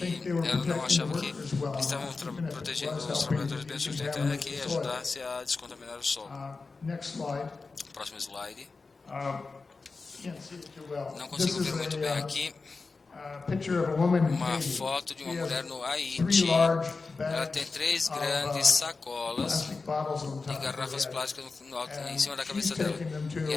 ela não achava que estavam protegendo os trabalhadores bem sustentáveis, que ajudasse a descontaminar o solo. Próximo slide. Não consigo ver muito bem aqui. Uma foto de uma mulher no Haiti. Ela tem 3 grandes sacolas de garrafas plásticas em cima da cabeça dela. E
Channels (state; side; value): quieter; right; 4.1 dB